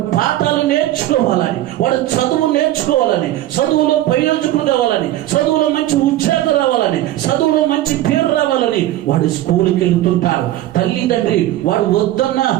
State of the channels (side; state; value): left; quieter; 14.4 dB